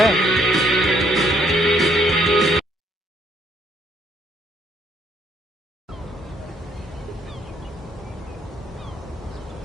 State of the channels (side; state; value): both; normal; correlation 0.68